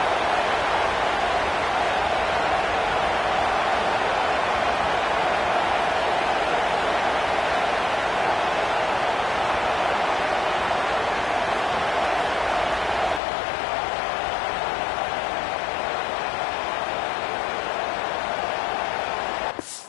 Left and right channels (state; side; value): drops out; right; at 13.2 s